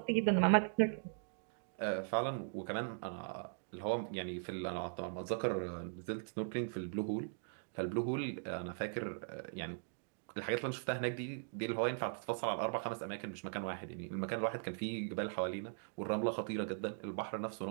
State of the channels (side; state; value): left; silent; digital silence